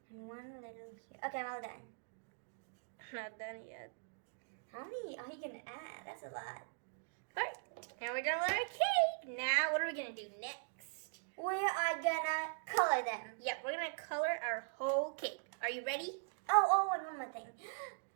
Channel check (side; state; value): left; silent; digital silence